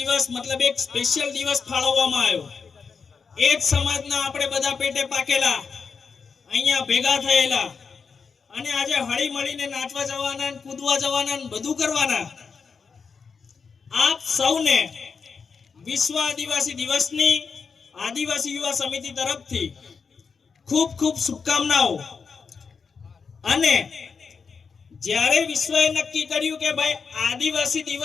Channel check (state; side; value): quieter; right; 5.5 dB